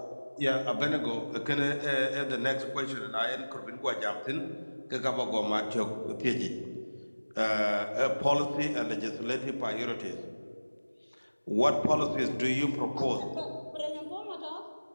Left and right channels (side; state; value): both; inverted; correlation -1.00